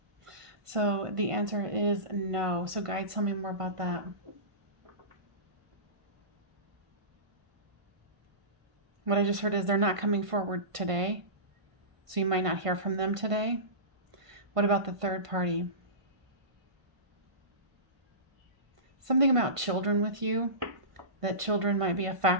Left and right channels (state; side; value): late; left; 1.5 ms